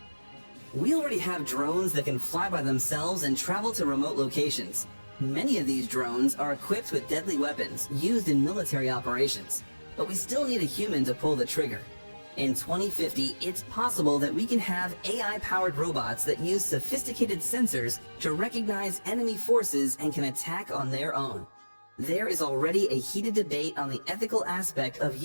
We already have drones that can fly by themselves and travel to remote locations. Many of these drones are equipped with deadly weapons used in military operations, but we still need a human to pull the trigger. In 2050, it's possible that we can have AI-powered robots that use sophisticated sensors to recognize enemy forces and can attack on their own. There is already a heated debate on the ethical aspect of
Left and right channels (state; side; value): inverted; both; correlation -1.00